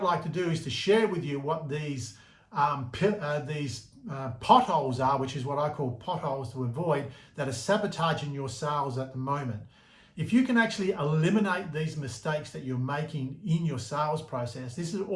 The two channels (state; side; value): identical; both; correlation 1.00